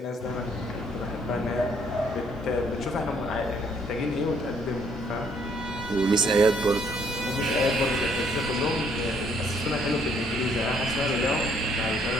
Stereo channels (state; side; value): normal; both; correlation 0.66